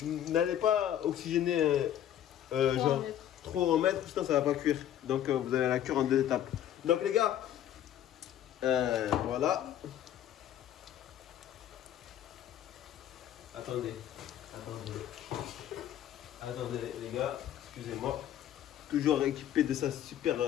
n'allez pas oxygéner genre trop en mettre, sinon ça va pas cuire. Donc vous allez la cuire en 2 étapes. Donc les gars, voilà. Attendez les gars, excusez-moi. Toujours équipé de sa super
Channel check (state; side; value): quieter; right; 11.0 dB